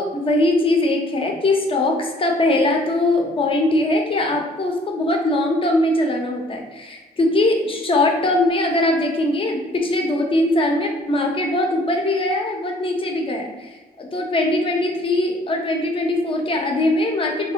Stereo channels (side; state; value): both; normal; correlation 0.57